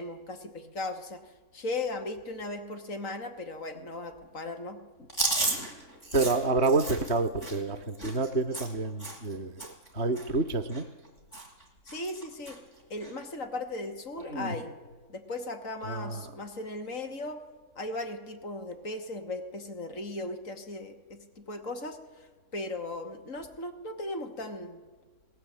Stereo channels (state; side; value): late; right; 3.5 ms